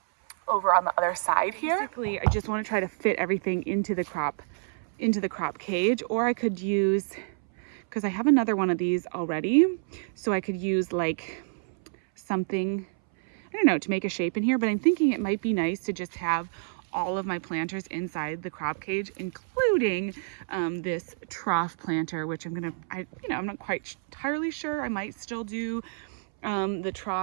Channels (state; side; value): silent; left; 59 dB below the other